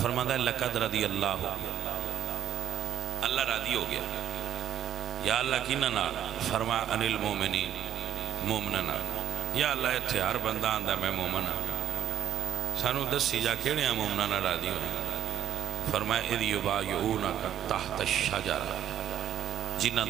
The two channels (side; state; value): left; quieter; 10.5 dB